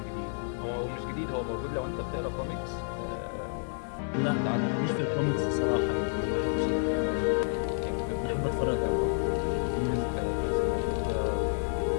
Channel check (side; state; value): right; silent; digital silence